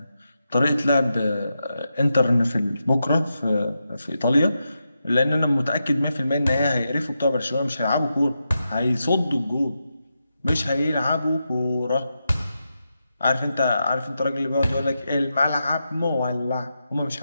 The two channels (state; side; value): inverted; both; correlation -0.87